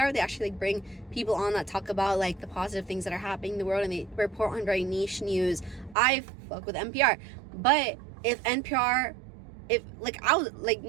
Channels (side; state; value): left; drops out; at 6.0 s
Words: they actually like bring people on that talk about like the positive things that are happening in the world, and they report on very niche news. I fuck with NPR. But if NPR, I was like,